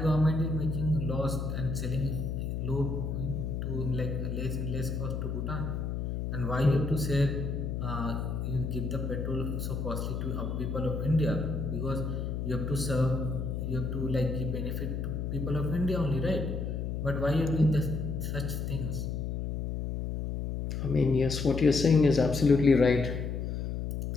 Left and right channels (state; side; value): noise; left; hum, 3 dB below the sound